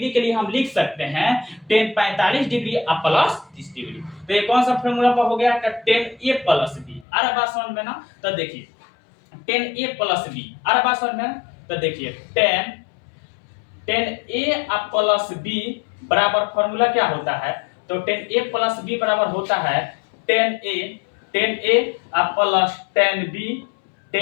के लिए हम लिख सकते हैं tan 45 डिग्री आप प्लस 30 डिग्री। तो ये कौन सा फॉर्मूला पर हो गया? 10a plus B. अरे बात समझ में ना? तो देखिए 10a प्लस बी, अरे बात समझ में ना? तो देखिए 10a प्लस बी बराबर फॉर्मूला क्या होता है? तो 10a प्लस बी बराबर होता है 10a प्लस 10b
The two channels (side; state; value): right; drops out; at 7.1 s